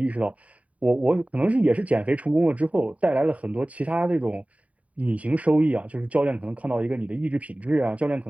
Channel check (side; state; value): left; late; 0.068 ms